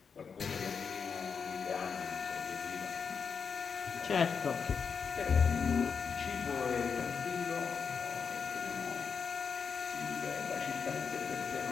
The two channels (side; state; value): right; quieter; 6.1 dB